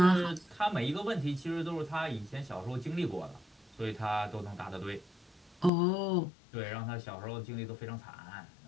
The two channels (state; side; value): drops out; right; at 5.7 s